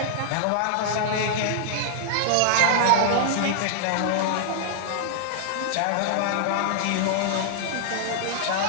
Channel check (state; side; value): different; both; correlation -0.01